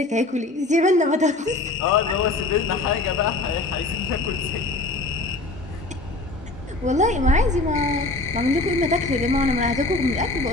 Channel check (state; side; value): quieter; right; 3.0 dB